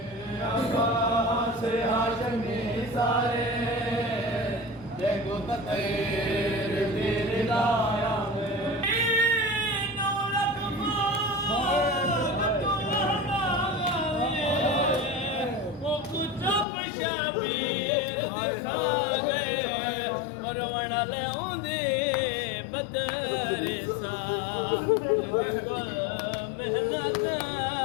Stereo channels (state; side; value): drops out; right; at 16.7 s